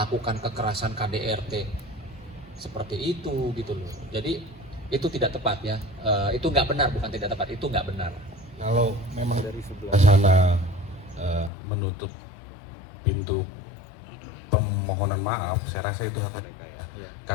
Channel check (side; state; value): right; drops out; at 11.5 s